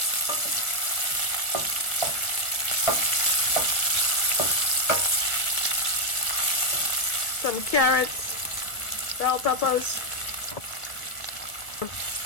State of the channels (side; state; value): right; late; 1.6 ms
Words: Some carrots, bell peppers.